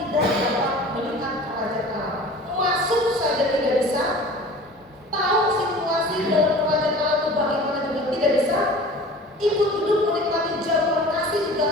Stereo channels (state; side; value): normal; both; correlation 0.42